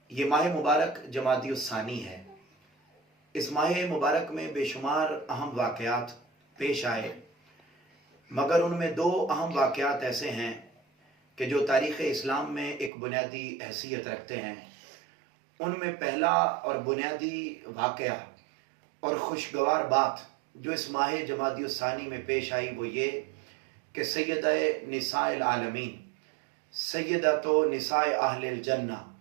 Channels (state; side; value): drops out; left; at 12.9 s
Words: ये माह मुबारक जमादी उस्सानी है। इस माह मुबारक में बेशुमार अहम वाक़यात पेश आए, मगर उनमें दो अहम वाक़यात ऐसे हैं कि जो तारीख़ इस्लाम में एक बुनियादी हैसियत रखते हैं। उनमें पहला और बुनियादी वाक़या और खुशगवार बात जो इस माह जमादी उस्सानी में पेश आई वो ये कि सैयदा निसाइल आलमीन, सैयदतो निसाए अहलिल जन्ना,